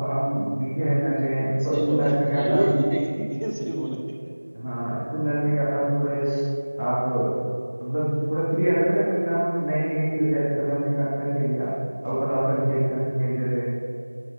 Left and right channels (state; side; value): inverted; both; correlation -1.00